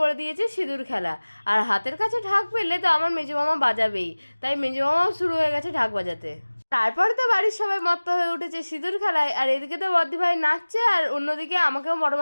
করে দিয়েছে সিঁদুর খেলা। আর হাতের কাছে ঢাক পেলে তো আমার মেজো মামা বাজাবেই, তাই মেজো মামাও শুরু হয়ে গেছে ঢাক বাজাতে। তারপরে তো বাড়ির সবাই মত্ত হয়ে উঠেছে সিঁদুর খেলায়, আর এদিকে তো বদ্দি ভাই নাচছে, আর অন্যদিকে আমাকেও বড়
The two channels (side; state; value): both; inverted; correlation -1.00